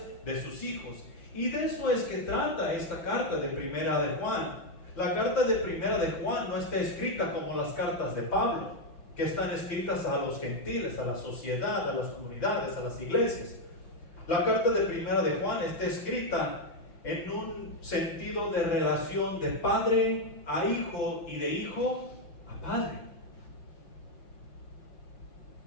de sus hijos. Y de eso es que trata esta carta de Primera de Juan. La carta de Primera de Juan no está escrita como las cartas de Pablo, que están escritas a los gentiles, a la sociedad, a las comunidades, a las iglesias. La carta de Primera de Juan está escrita en un sentido de relación de padre a hijo y de hijo a padre.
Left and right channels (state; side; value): late; right; 5.9 ms